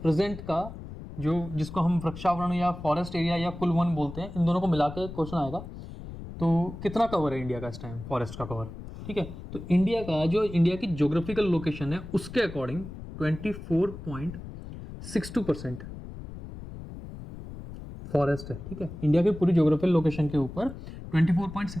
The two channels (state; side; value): noise; left; rumble, 12 dB below the sound